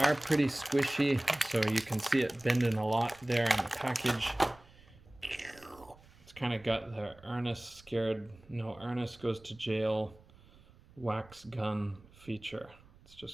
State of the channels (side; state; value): right; noise; rumble, 25 dB below the sound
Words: pretty squishy, so you can see it bending a lot there in the package. It's kind of got the Ernest scared, no Ernest goes to jail wax gun feature. It's